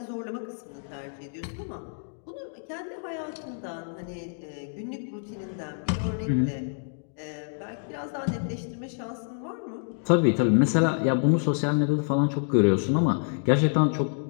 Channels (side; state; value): right; silent; digital silence